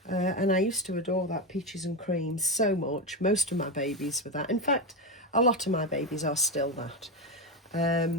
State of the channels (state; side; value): normal; both; correlation 0.13